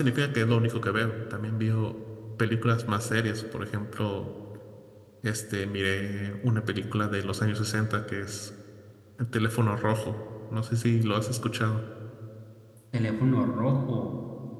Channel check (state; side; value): identical; both; correlation 1.00